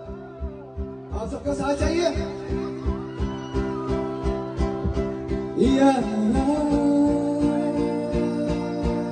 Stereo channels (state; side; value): identical; both; correlation 1.00